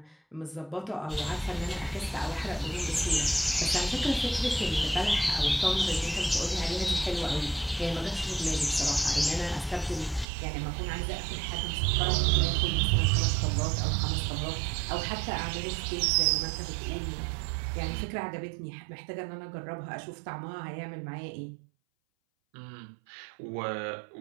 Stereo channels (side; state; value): left; drops out; at 10.2 s